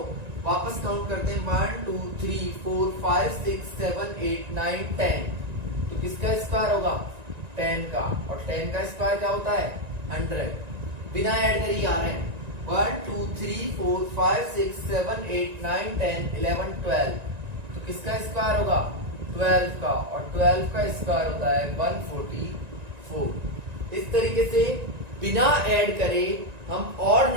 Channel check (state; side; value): late; left; 1.9 ms